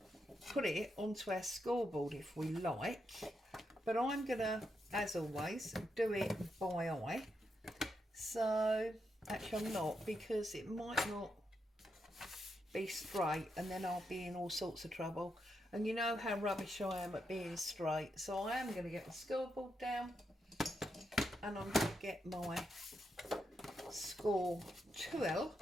put it onto our scoreboard if we like, but I'm going to, as always, do it by eye. So actually I'm not, because it might not be straight and then I'll be in all sorts of trouble, and you know how rubbish I am at being straight. So I am going to get the scoreboard down and I'm going to get my score 2L,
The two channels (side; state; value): both; normal; correlation 0.83